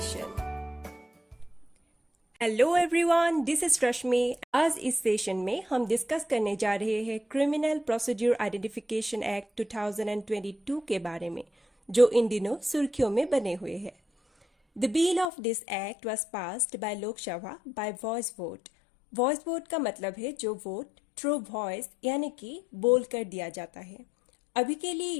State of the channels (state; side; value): drops out; right; at 15.3 s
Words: Hello everyone, this is Rashmi. आज इस सेशन में हम डिस्कस करने जा रहे हैं क्रिमिनल प्रोसीड्यूर आइडेंटिफिकेशन एक्ट 2022 के बारे में, जो इन दिनों सुर्खियों में बने हुए हैं। The bill of this act was passed by Lok Sabha bye voice vote. Voice vote का मतलब है जो वोट थ्रू वॉइस यानी कि बोल कर दिया जाता है। अभी के लिए